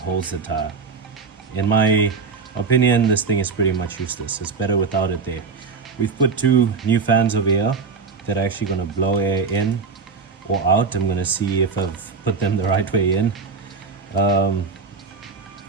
the tire. In my opinion, this thing is pretty much useless. It's better without it there. We've put two new fans over here that are actually going to blow air in or out. I'm going to see if I've put them the right way in. I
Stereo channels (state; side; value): quieter; left; 5.0 dB